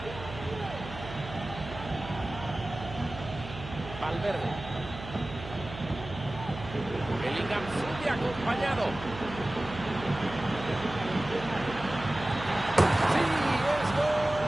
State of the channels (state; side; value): noise; right; hum, 12 dB below the sound